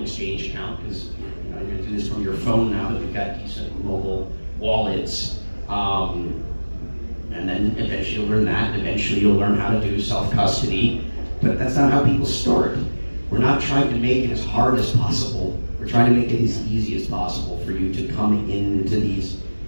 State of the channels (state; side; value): inverted; both; correlation -1.00